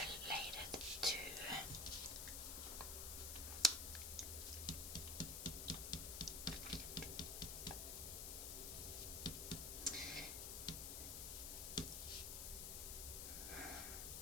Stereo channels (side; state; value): left; noise; hiss, 3 dB below the sound